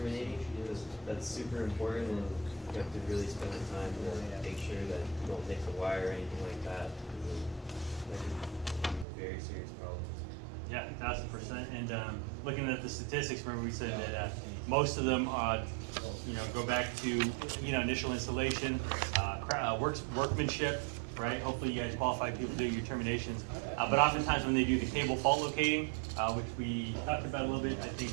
because that's super important, and you have to really spend the time to make sure that you don't nick the wire or anything like that. That could be very serious problems. Yeah, 1000%. And looking at the statistics, remember we said that most of them, go back to initial installation, workmanship, right? Hopefully you guys qualified people do your terminations. But oftentimes when they do the cable fault locating, which we talked about a little bit, I think,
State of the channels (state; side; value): drops out; left; at 9.1 s